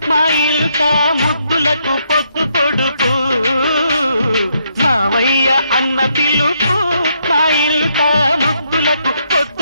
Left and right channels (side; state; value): both; inverted; correlation -0.75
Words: మా ఇల్ట ముద్దులకు పొద్దు పొడుపు మావయ్య అన్న పిలుపు మా ఇల్ట ముద్దులకు